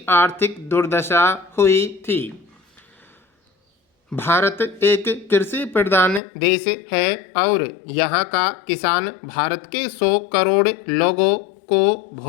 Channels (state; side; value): drops out; right; at 6.2 s